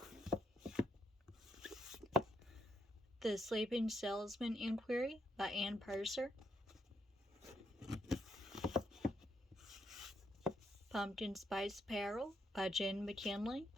The Sleeping Salesman Inquiry by Ann Purser. Pumpkin Spice Peril by Jen McKinley.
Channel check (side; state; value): both; normal; correlation 0.78